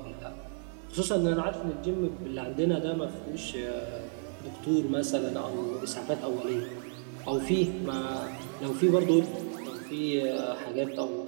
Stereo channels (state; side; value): silent; left; digital silence